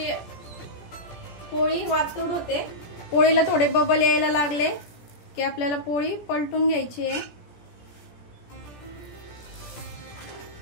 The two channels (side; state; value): right; late; 17 ms